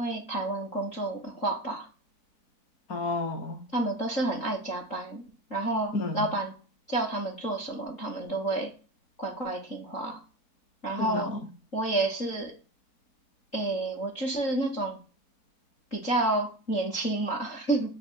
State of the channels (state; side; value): late; right; 3.8 ms